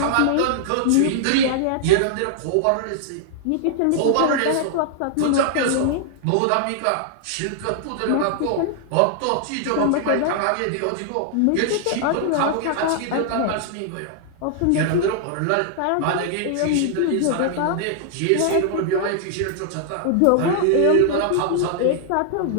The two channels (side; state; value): both; different; correlation -0.01